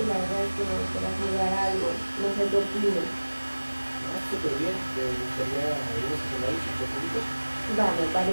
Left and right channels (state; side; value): inverted; both; correlation -1.00